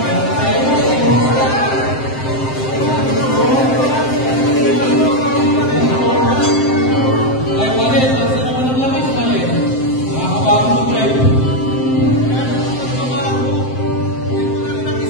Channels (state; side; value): late; right; 7.7 ms